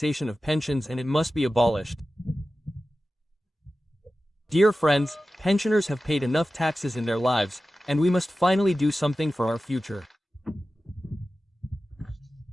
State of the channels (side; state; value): both; normal; correlation 0.95